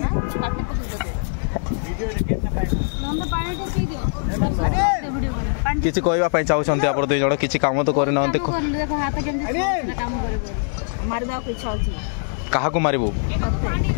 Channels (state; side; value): silent; right; 64 dB below the other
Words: किसी कहबा पई चाहछंती आपण दुई जण किछि काम तो करि नहंते कहा को मारिबो